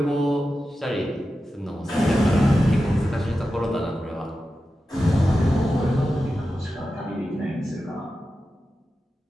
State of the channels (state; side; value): normal; both; correlation 0.92